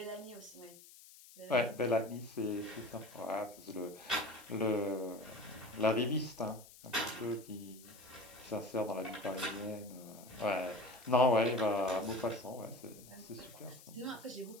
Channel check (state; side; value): noise; left; hiss, 20 dB below the sound